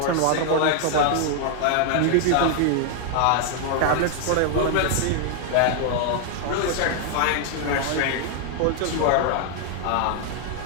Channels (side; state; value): both; different; correlation 0.00